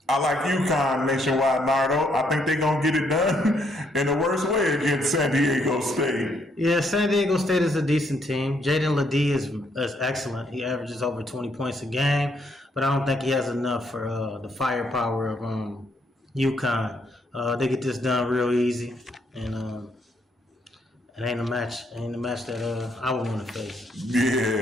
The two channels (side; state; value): both; normal; correlation 0.72